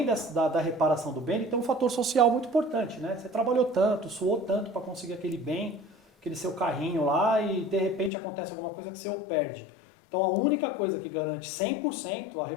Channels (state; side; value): drops out; right; at 8.1 s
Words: da reparação do bem, ele tem um fator social muito importante, Você trabalhou tanto, suou tanto para conseguir aquele bem, aquele seu carrinho lá e de repente acontece alguma coisa que você o perde. Então a única coisa que garante 100% a